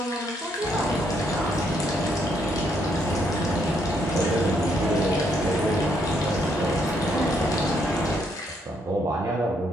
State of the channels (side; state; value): both; normal; correlation 0.73